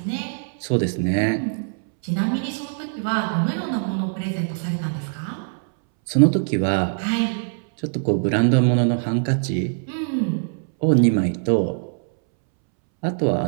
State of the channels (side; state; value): left; silent; 64 dB below the other